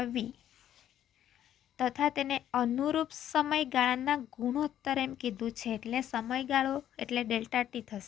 v તથા તેને અનુરૂપ સમયગાળાના ગુણોત્તર એમ કીધું છે, એટલે સમયગાળો એટલે ડેલ્ટા ટી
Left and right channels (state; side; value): quieter; right; 11.1 dB